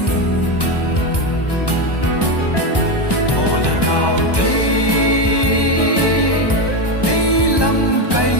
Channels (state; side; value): late; right; 1.1 ms